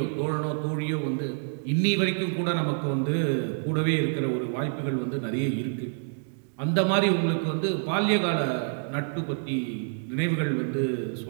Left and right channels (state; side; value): silent; left; digital silence